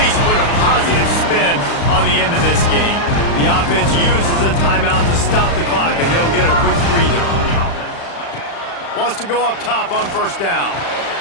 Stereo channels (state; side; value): late; right; 35 ms